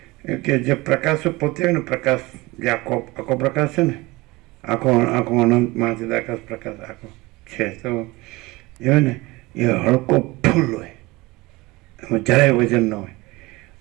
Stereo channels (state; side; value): quieter; left; 21.9 dB